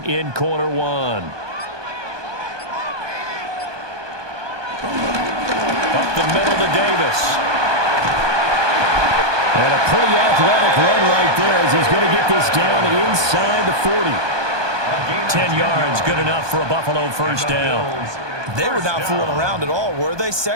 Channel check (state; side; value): late; left; 1.2 ms